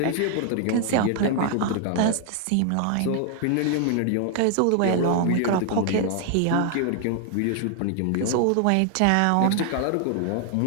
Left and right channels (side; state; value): both; different; correlation 0.00